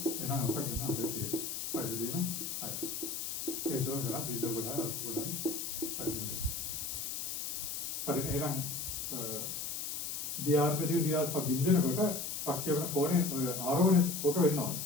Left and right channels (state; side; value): noise; left; hiss, 4 dB below the sound